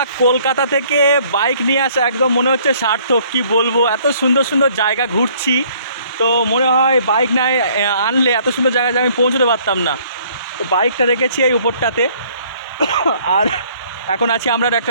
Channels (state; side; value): inverted; both; correlation -0.60